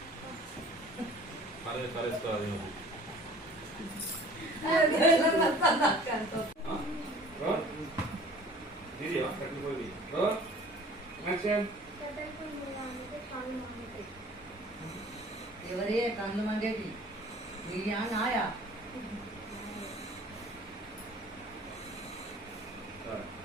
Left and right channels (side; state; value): both; normal; correlation 0.48